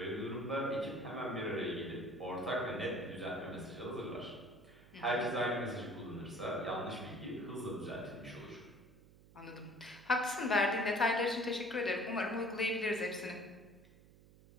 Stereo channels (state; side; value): noise; right; hum, 23 dB below the sound